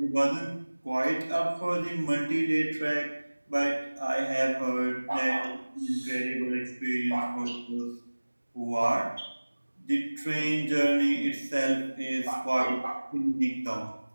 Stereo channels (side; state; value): both; inverted; correlation -1.00